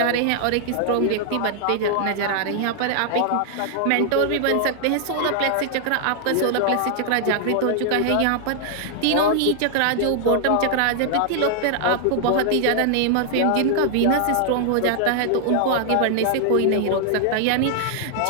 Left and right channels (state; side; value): different; both; correlation -0.01